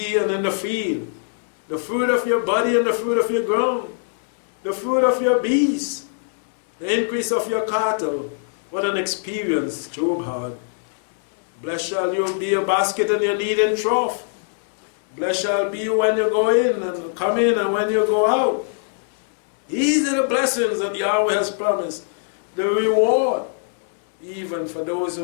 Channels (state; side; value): silent; right; 64 dB below the other